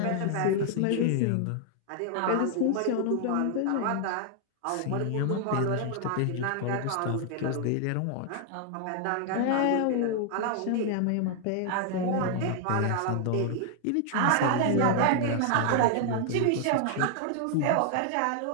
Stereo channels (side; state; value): both; different; correlation 0.00